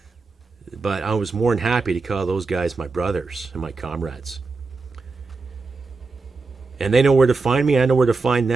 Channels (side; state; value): left; quieter; 4.1 dB